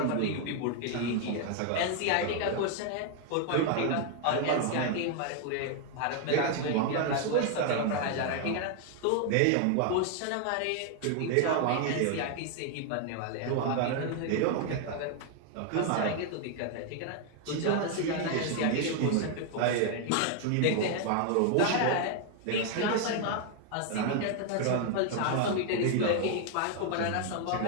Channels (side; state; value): both; different; correlation 0.00